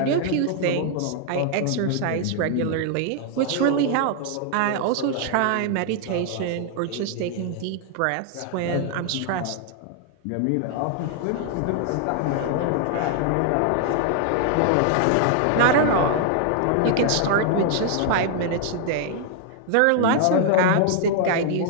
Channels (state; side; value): different; both; correlation 0.00